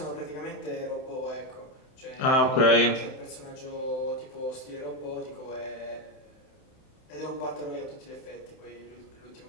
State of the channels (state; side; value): late; right; 31 ms